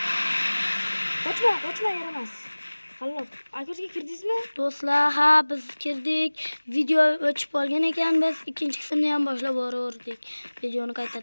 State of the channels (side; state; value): both; inverted; correlation -1.00